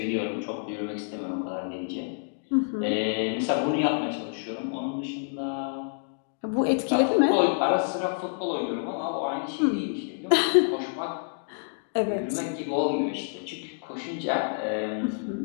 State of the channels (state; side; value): silent; right; digital silence